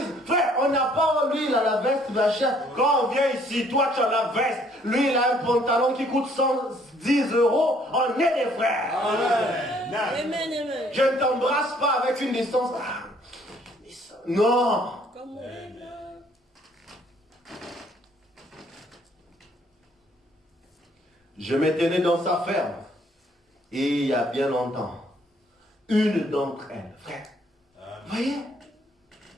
frère, on n'a pas lui, il a la veste, machin. Quand on vient ici, toi tu as la veste, lui il a un pantalon qui coûte 110 euros, on est des frères. Amen. Amen. Je ne t'embrasse pas avec une distance. Non. Comme on est là. Je me tenais dans sa ferme. Et il y a bien longtemps, une d'entre elles, frère, voyez,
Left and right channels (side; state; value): both; normal; correlation 0.63